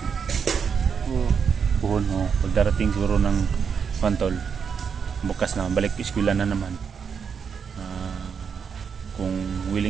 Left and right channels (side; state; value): left; quieter; 6.6 dB